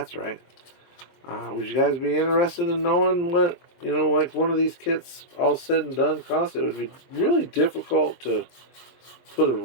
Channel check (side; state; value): right; late; 23 ms